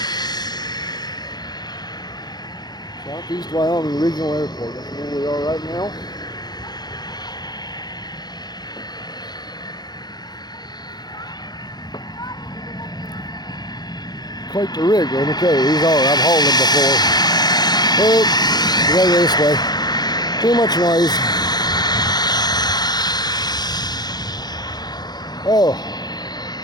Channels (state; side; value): late; right; 0.20 ms